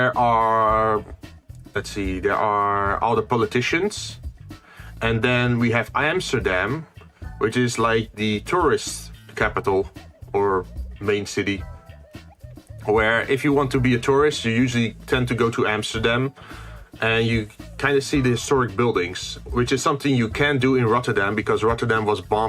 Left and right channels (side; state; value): both; identical; correlation 1.00